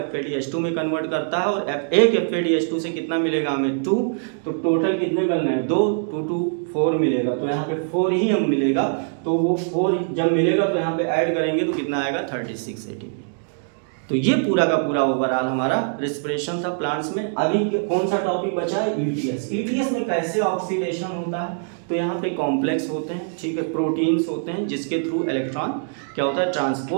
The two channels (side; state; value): left; silent; digital silence